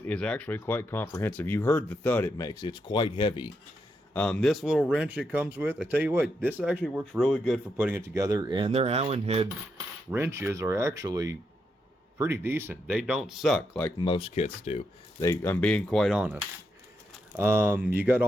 is actually quite comprehensive. You heard the thud it makes. It's quite heavy. This little wrench it comes with, I tell you what, this actually works really good for putting it together, and their Allen head wrenches are actually pretty decent. They don't suck like most kits do. I'm being quite honest. You got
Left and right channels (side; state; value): both; normal; correlation 0.82